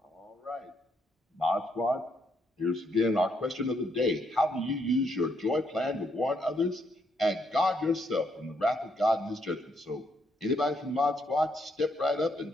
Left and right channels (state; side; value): normal; both; correlation 0.75